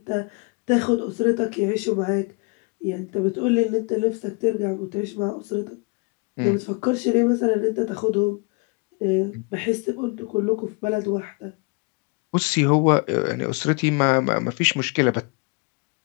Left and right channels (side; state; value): right; quieter; 31.2 dB